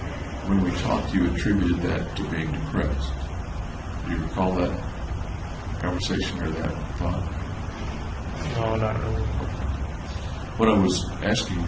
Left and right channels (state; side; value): identical; both; correlation 1.00